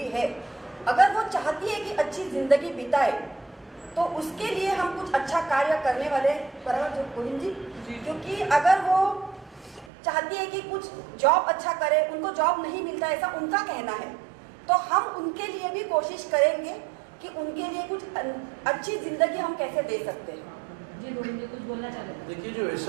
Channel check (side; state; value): left; drops out; at 9.9 s